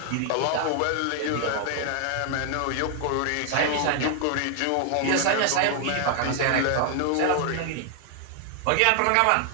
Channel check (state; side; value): different; both; correlation 0.00